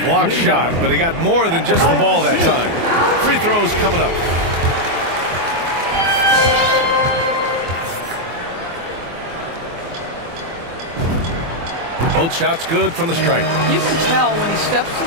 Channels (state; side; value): late; left; 24 ms